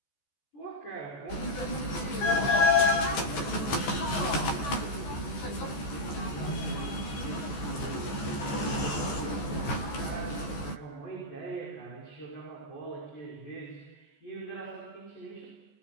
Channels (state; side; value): late; right; 14 ms